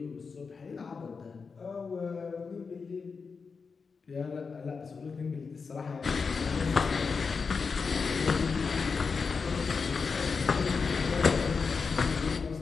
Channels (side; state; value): right; quieter; 5.1 dB